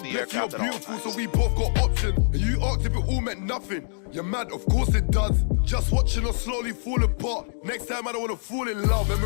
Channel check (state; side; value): silent; right; digital silence